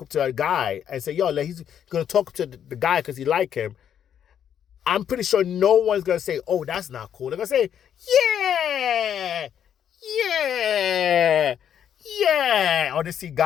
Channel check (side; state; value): right; quieter; 9.1 dB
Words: up to a guy and say, yo, he's going to talk to the guy because he like him. I'm pretty sure no one's going to say, oh, that's not cool. They're going to say, yeah. Or they see